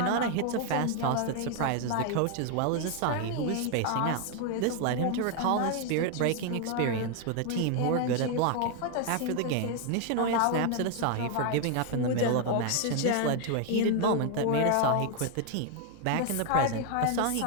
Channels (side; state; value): both; different; correlation 0.00